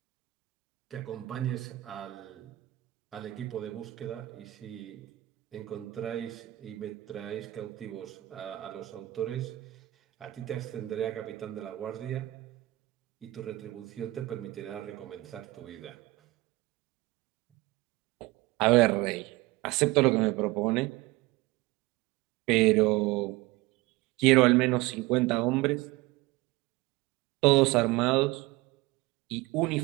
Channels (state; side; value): quieter; left; 19.4 dB